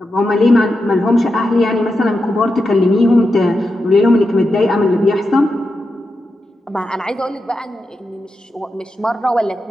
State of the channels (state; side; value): normal; both; correlation 0.88